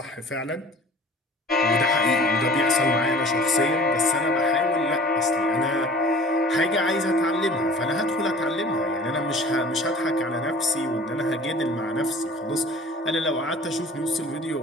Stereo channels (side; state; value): both; normal; correlation 0.45